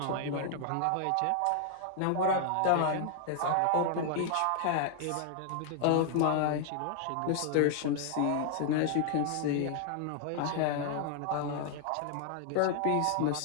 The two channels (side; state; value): both; different; correlation 0.00